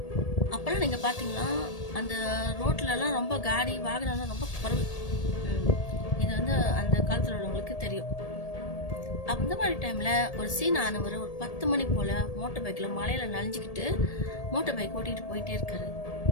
அப்போல்லாம் நீங்கள் பார்த்தீங்கன்னா அந்த ரோட்லலாம் ரொம்ப காடி வாகனம்லாம் ரொம்ப குறைவு. இது வந்து அந்த காலத்தில் உள்ளவங்களுக்கு தெரியும். அந்த மாதிரி டைமில் ஒரு சீன் ஆனவர் ஒரு 10 மணி போல் மோட்டர் பைக்கில் மலையில் நனைஞ்சிக்கிட்டு மோட்டர் பைக் ஓட்டிகிட்டு போயிட்டே இருக்காரு.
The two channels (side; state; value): right; late; 1.8 ms